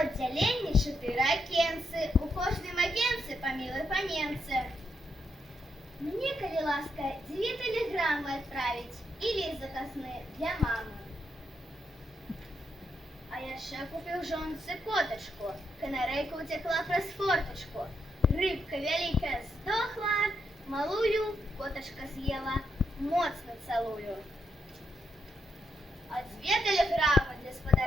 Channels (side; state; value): both; normal; correlation 0.80